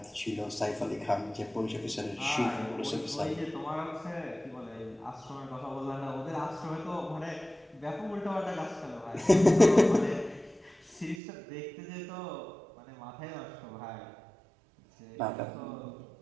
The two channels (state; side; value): drops out; left; at 11.2 s